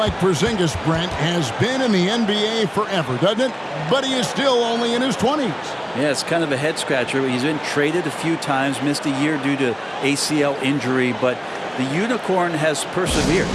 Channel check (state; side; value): identical; both; correlation 1.00